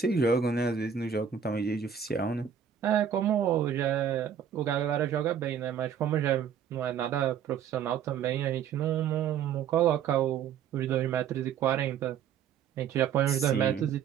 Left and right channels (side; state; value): left; quieter; 8.2 dB